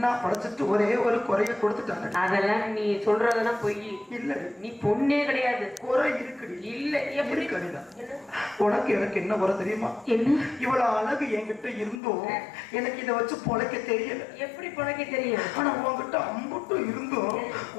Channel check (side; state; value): right; drops out; at 12.0 s